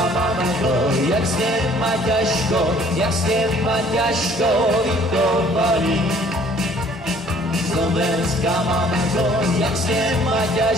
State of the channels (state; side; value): normal; both; correlation 0.57